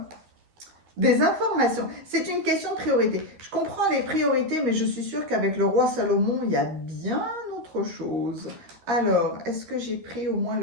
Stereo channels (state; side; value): late; left; 13 ms